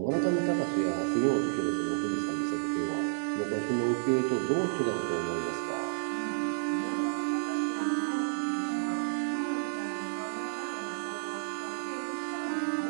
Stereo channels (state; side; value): silent; left; 57 dB below the other